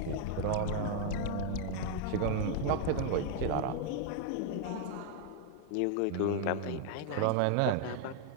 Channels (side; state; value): both; different; correlation 0.00